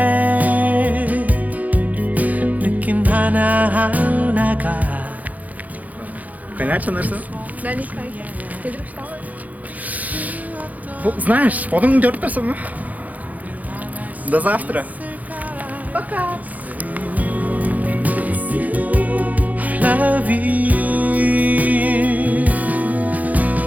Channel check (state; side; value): late; left; 0.078 ms